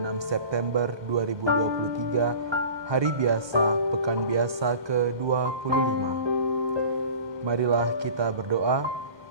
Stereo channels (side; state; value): left; late; 1.2 ms